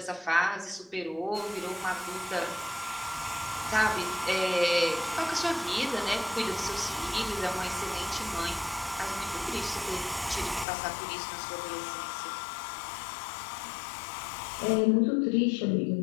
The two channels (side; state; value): right; drops out; at 10.7 s